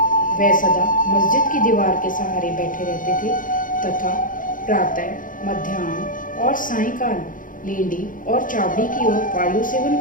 वे सदा मस्जिद की दीवार के सहारे बैठे रहते थे तथा प्रातः, मध्याह्न और सायंकाल लेंडी और चावड़ी की ओर वायु सेवन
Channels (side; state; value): right; late; 0.39 ms